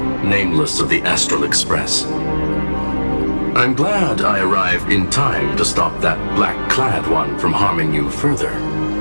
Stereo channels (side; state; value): both; inverted; correlation -1.00